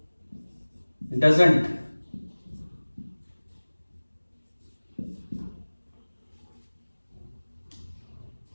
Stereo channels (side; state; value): both; inverted; correlation -1.00